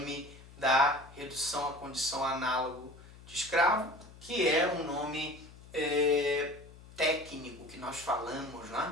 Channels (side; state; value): left; noise; hum, 20 dB below the sound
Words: da redução à condição análogo de escravo, que é um nome técnico que nós falamos,